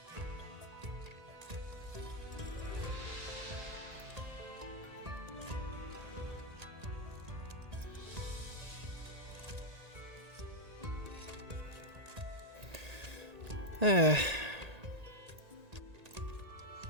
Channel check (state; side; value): late; left; 1.8 ms